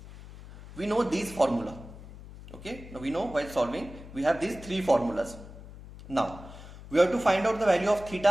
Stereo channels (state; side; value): noise; left; hum, 16 dB below the sound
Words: we know these formula. Okay, now we know while solving we have these three formulas. Now we have to find out the value of